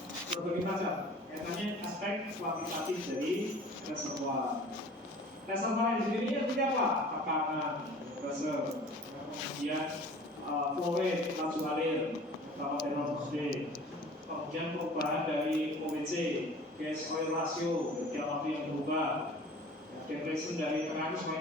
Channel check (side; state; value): both; normal; correlation 0.45